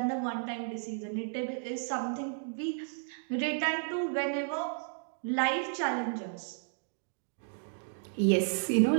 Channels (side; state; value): left; silent; digital silence